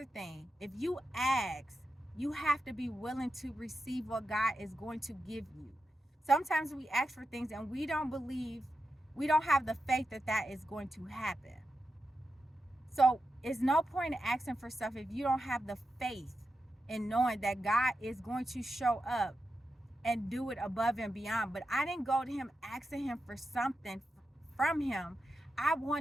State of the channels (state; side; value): normal; both; correlation 0.89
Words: thing. If you ask, you have to be willing to receive what God is going to give you. Sometimes we ask for things and we don't have the faith that is going to happen. So it's no point in asking for stuff if you don't have the faith in knowing that God is going to show up and do it above and beyond. But I didn't go to him asking him for something from him. I